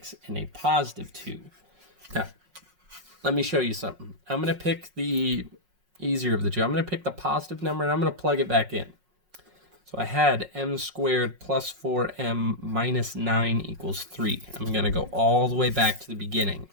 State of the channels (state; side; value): late; left; 5.5 ms